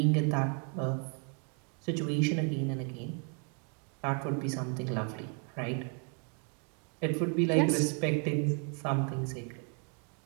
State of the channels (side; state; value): left; quieter; 39.1 dB